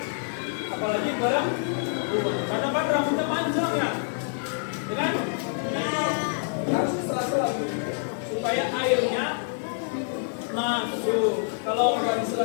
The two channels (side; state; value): right; silent; digital silence